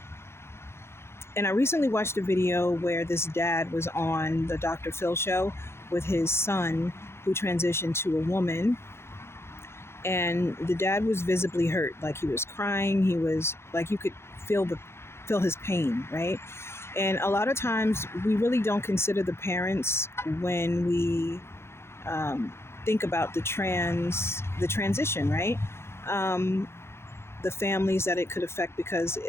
I recently watched a video where this dad was on the Dr. Phil show with his son who transitioned to a woman. And the dad was visibly hurt, like he was crying. He was like, you could feel his pain, right? And a lot of times we really don't consider the parents when we think about the transition, right? The families that it could affect, because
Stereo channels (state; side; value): late; right; 0.12 ms